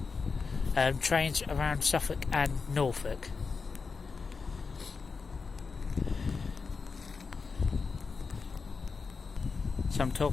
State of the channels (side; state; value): right; quieter; 4.8 dB